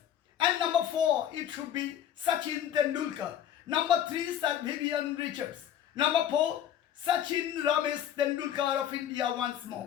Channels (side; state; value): right; quieter; 10.3 dB